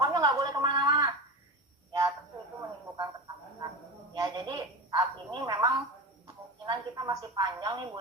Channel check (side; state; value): both; normal; correlation 0.26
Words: nggak boleh kemana-mana. Ya tentu itu menimbulkan ketakutan. Ya jadi saat ini memang kemungkinan kita masih panjang nih Bu